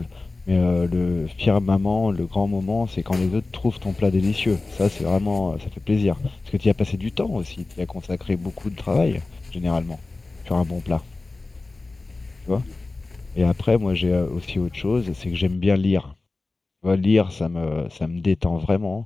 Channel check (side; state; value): right; quieter; 3.4 dB